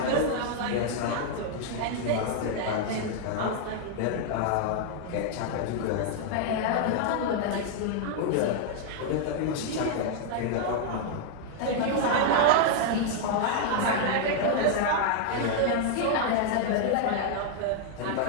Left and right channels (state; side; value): different; both; correlation 0.00